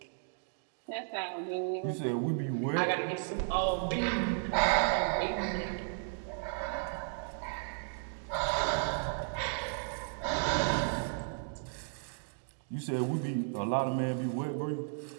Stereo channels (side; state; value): left; silent; digital silence